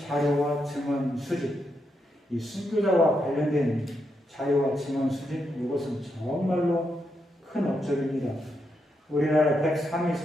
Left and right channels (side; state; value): both; normal; correlation 0.82